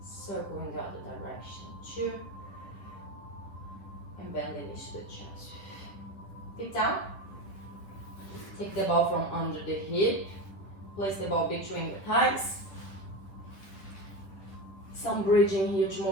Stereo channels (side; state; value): right; late; 11 ms